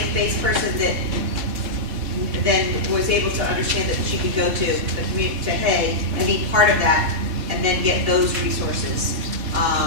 person that then was able to understand that she could go to the community, to Hay, and be part of that, and then get those resources.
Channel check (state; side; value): late; left; 4.1 ms